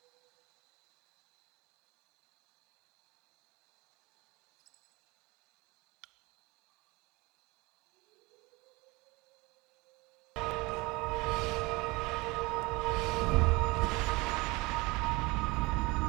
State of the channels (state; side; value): quieter; left; 24.0 dB